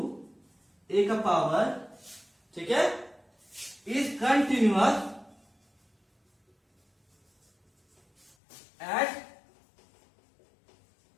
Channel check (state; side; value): drops out; right; at 8.3 s